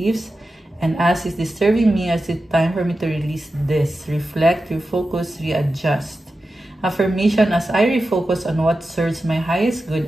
and ask, is this serving me? Is it time for me to release this? Reflect, refocus, readjust. Affirmation, as I refocus on what serves my highest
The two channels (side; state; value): both; normal; correlation 0.92